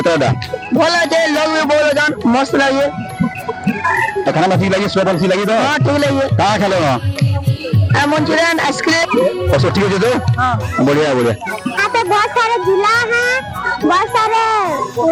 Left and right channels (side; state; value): both; identical; correlation 1.00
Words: भल लगे लोग भी बोल जान मस्त लगे तो खाना ठीक लगी स्वेटर ठीक लगी तो हाँ ठीक लगे कहाँ खेलो वहाँ मंचूरियन आइसक्रीम और सब ठीक है तो हाँ बढ़िया बढ़िया। यहाँ पे बहुत सारे झूला हैं बहुत सारे